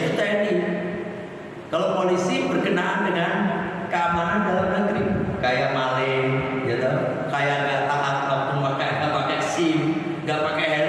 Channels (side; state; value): both; identical; correlation 1.00